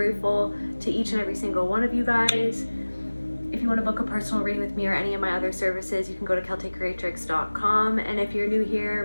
to each and every single one of you guys. If you want to book a personal reading with me or any of my other services, you can go to KelteCreatrix.com. And if you're new here,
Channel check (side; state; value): both; inverted; correlation -1.00